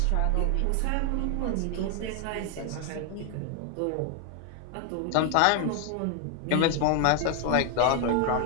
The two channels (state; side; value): different; both; correlation 0.00